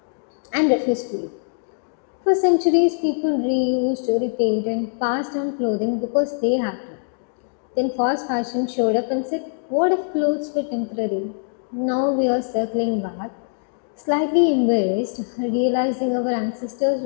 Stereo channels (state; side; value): silent; right; digital silence